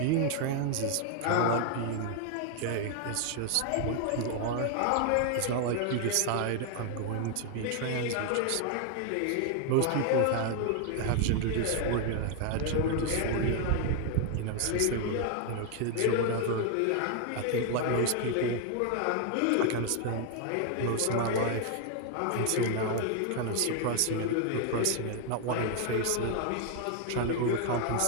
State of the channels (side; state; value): both; different; correlation 0.00